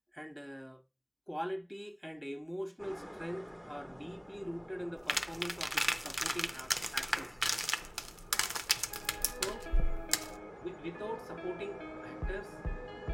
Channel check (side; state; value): both; identical; correlation 1.00